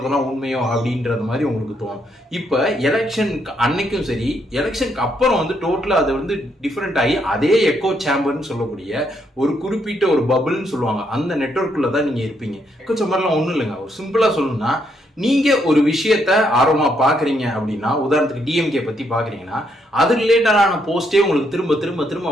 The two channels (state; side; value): normal; both; correlation 0.75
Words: உண்மையோ அப்படின்றது மாதிரி உங்களுக்கு தோணும். இப்ப எலெக்ஷன் அன்னைக்கும் சரி, எலெக்ஷனுக்கு அப்புறம் டோட்டலா அது டிஃபரெண்ட் ஆகி அதே எக்கோ சேம்பர்னு சொல்லக்கூடிய ஒரு குறிப்பிட்ட ஒரு பபிள்னு சொல்லுவாங்க, அந்த நெட்வொர்க்குள்ள தான் நீங்க இருப்பீங்க. எக்கோ சேம்பர்லாம் ஒண்ணும் இல்லைங்க. ஒரு சிம்பிளா சொல்லணும்னா, நீங்க ஒரு விஷயத்த ஆர்வமா பாக்குறீங்க அப்படின்னா, உதாரணத்துக்கு டிஎம்கே பத்தி பாக்குறீங்கன்னா அது ரிலேட்டடான போஸ்டே உங்களுக்கு திரும்ப திரும்ப திரும்ப